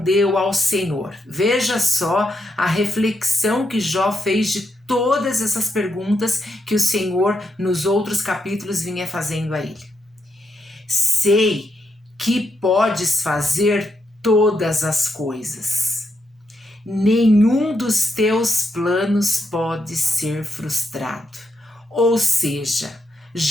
ao Senhor. Veja só a reflexão que Jó fez de todas essas perguntas que o Senhor nos outros capítulos vinha fazendo a ele. Sei que podes fazer todas as coisas. Nenhum dos teus planos pode ser frustrado. Ou seja,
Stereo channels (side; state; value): both; normal; correlation 0.81